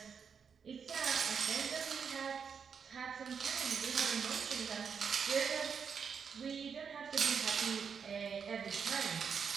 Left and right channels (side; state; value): left; quieter; 6.5 dB